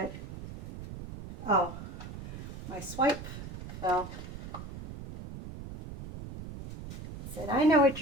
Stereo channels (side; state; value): right; noise; rumble, 10 dB below the sound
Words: oh, my swipe fell. I said, I know what